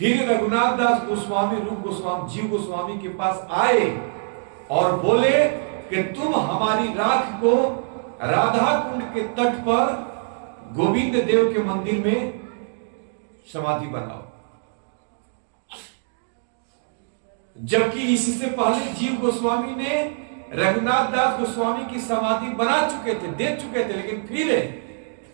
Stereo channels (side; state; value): left; silent; digital silence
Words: रघुनाथ दास गोस्वामी रूप गोस्वामी जीव गोस्वामी के पास आए और बोले कि तुम हमारी राख को राधा कुंड के तट पर गोविंद देव के मंदिर में समाधि बनाओ। जबकि इससे पहले जीव गोस्वामी ने रघुनाथ दास गोस्वामी की समाधि बना चुके थे, दे चुके थे। लेकिन फिर